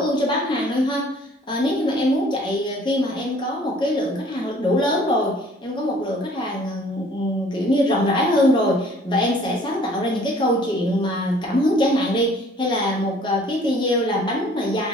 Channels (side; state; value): both; normal; correlation 0.55